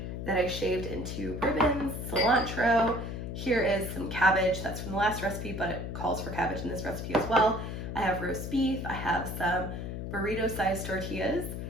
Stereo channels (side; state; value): left; noise; hum, 6 dB below the sound